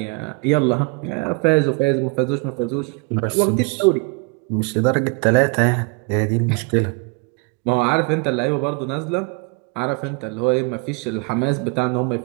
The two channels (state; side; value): quieter; left; 31.1 dB